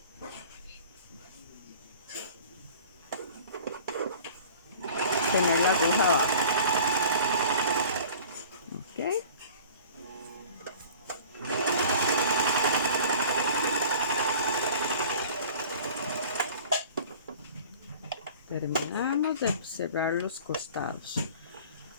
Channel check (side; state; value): both; inverted; correlation -0.45